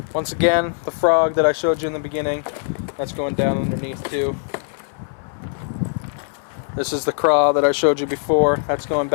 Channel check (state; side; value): silent; right; 65 dB below the other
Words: Once again, the frog that I showed you in the beginning, that's going down underneath too. This is the craw that I showed you before. That's going